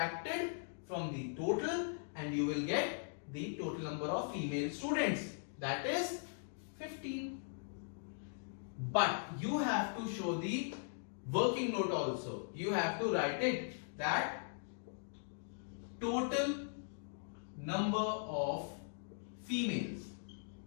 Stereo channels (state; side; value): silent; right; digital silence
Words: from the total and you will get the total number of female students, that is 15. But you have to show the working note also. You have to write it that total number of females.